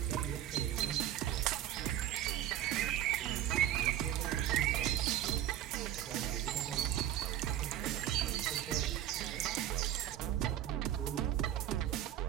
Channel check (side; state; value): left; quieter; 11.9 dB